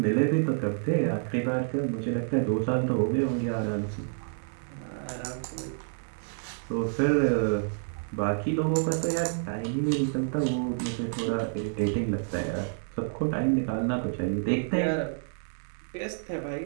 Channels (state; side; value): silent; left; 59 dB below the other